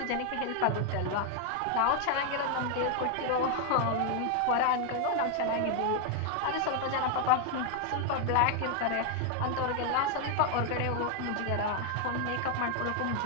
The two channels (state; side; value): different; both; correlation 0.00